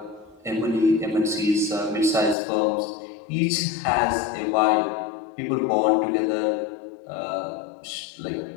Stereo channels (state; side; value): drops out; right; at 2.4 s